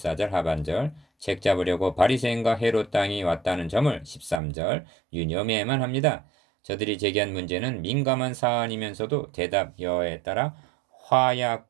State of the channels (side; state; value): left; drops out; at 4.4 s